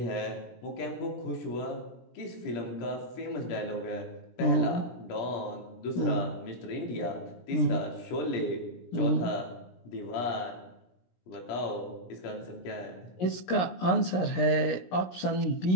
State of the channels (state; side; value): late; right; 17 ms